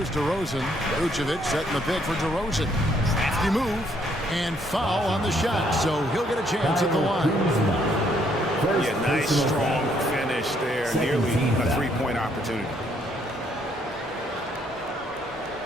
DeRozan. Vucevic setting the pick for DeRozan. Crafty move and foul on the shot, so he'll get a chance at the line. Yeah, nice, strong finish there. Nearly a 3-point opportunity.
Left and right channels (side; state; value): both; normal; correlation 0.69